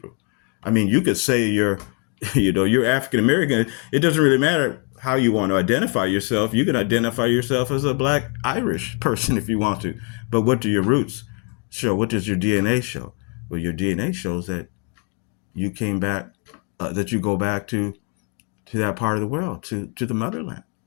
I mean, you could say you're, you're African American. It doesn't really matter how you want to identify yourself. You can identify yourself as a Black Irish person if you want to. But what do your roots show? What does your DNA show? Well, your DNA shows that you came back, that you go back to that part of the world, to the motherland.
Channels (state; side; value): quieter; right; 38.0 dB